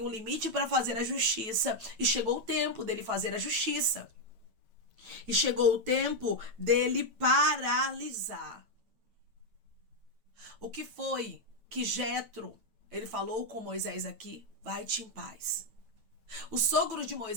um limite para fazer a justiça. E chegou o tempo dele fazer a justiça. E chegou o tempo dele paralisar. O que foi que Jetro, ele falou com Moisés aqui? Vai-te em paz. O sogro de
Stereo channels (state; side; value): late; left; 9.1 ms